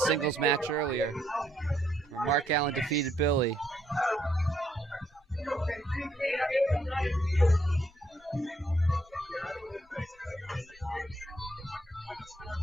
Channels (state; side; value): normal; both; correlation 0.72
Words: match earlier, where Mark Allen defeated Billy.